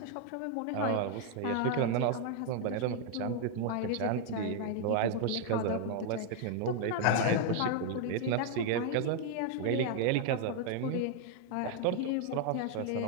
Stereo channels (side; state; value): both; different; correlation 0.00